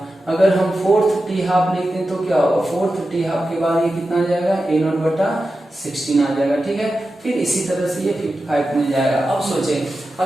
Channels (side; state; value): both; normal; correlation 0.92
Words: अगर हम फोर्थ टी हाफ लिखते हैं तो क्या होगा, फोर्थ टी हाफ के बाद ये कितना आ जाएगा, a नोट बटा 16 आ जाएगा, ठीक है। फिर इसी तरह से ये 55 मिल जाएगा। अब सोचें